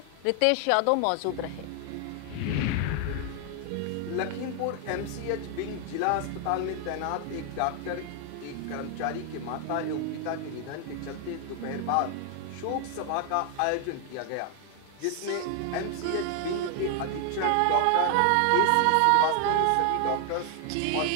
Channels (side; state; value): both; different; correlation 0.00